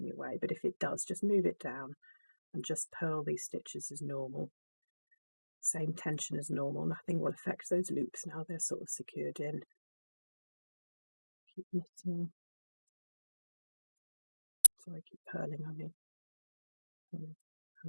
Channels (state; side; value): inverted; both; correlation -1.00